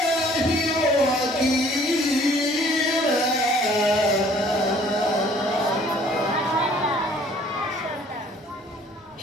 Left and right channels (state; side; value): normal; both; correlation 0.56